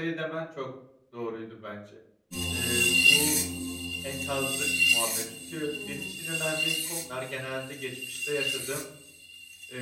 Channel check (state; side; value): identical; both; correlation 1.00